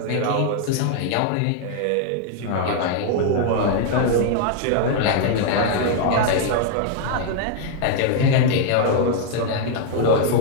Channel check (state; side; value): different; both; correlation 0.00